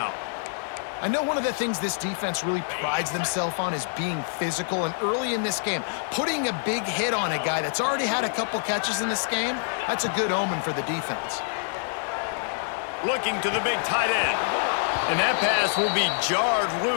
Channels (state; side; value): silent; right; 59 dB below the other